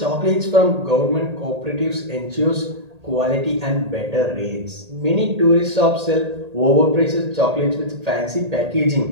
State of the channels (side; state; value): left; late; 1.8 ms